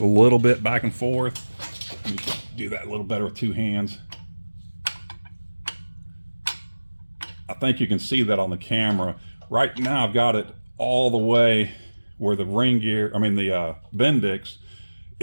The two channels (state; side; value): inverted; both; correlation -1.00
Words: little bit back and forth. You can do that a little better with two hands. I think you can see that on the camera. Right now I've got it all the way where the ring gear, the Bendix,